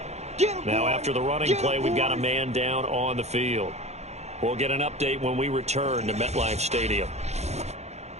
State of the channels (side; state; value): left; late; 0.32 ms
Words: Now after the running play, we've got a man down on the field. We'll get an update when we return to MetLife Stadium.